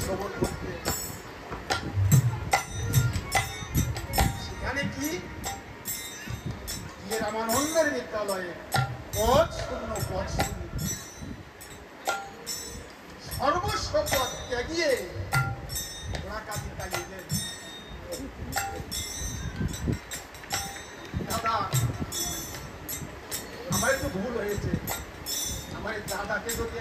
করতে সেখানে কি রামানন্দের বিদ্যালয়ে পদ শূন্য সর্বস্ব পদ ত্যাগিয়ে ওরা কাজে লাগিয়ে দাদা আমার একটু ভুল হয়েছে আমার দাদাকে যদি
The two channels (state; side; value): identical; both; correlation 1.00